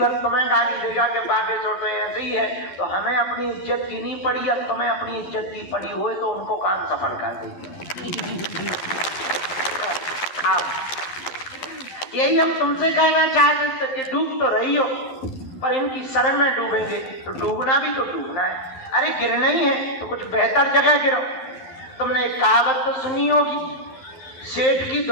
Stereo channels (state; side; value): late; right; 11 ms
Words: तुम्हें गाली देगा कि बागेश्वर तो ऐसे ही है। तो हमें अपनी इज्जत की नहीं पड़ी, अब तुम्हें अपनी इज्जत की पड़ी हुए तो उनको काम सफल कर देगी। यही हम तुमसे कहना चाहते थे कि डूब तो रही हो, पर इनकी शरण में डूबेंगे तो डूबना भी तो डूबना है। अरे गिरना ही है तो कुछ बेहतर जगह गिरो। तुमने एक कहावत तो सुनी होगी, सेठ की